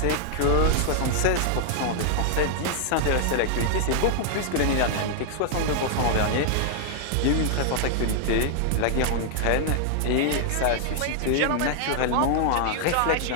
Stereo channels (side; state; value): both; different; correlation 0.00